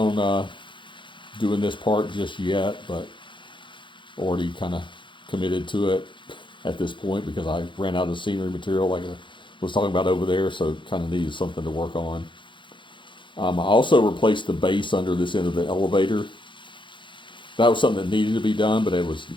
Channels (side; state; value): right; late; 0.23 ms